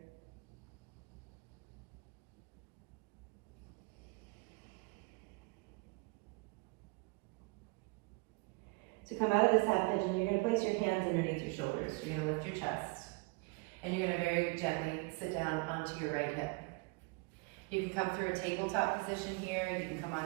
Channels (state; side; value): quieter; left; 28.3 dB